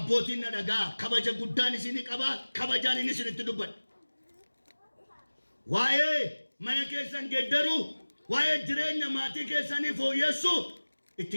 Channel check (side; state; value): both; inverted; correlation -1.00